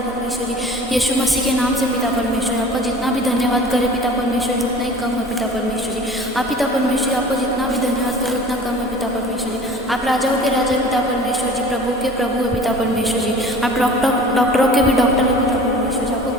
जी, यीशु मसीह के नाम से पिता परमेश्वर। आपका जितना भी धन्यवाद करे पिता परमेश्वर जी उतना ही कम है पिता परमेश्वर जी। आप पिता परमेश्वर जी, आपको जितना भी धन्यवाद करे उतना कम है पिता परमेश्वर जी। आप राजाओं के राजा पिता परमेश्वर जी, प्रभु के प्रभु है पिता परमेश्वर जी। आप डॉक्टरों के भी डॉक्टर है पिता परमेश्वर जी। आपको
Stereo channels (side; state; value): both; normal; correlation 0.43